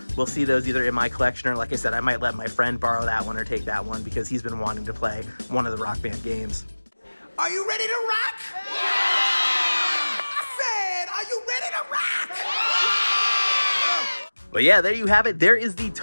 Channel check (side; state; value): both; inverted; correlation -1.00